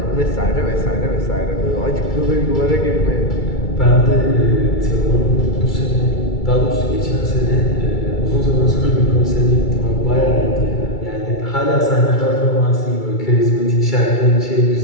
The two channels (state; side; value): late; right; 2.3 ms